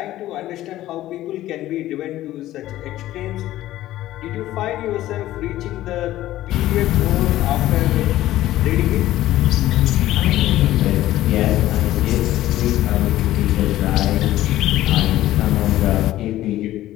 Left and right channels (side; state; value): right; quieter; 14.7 dB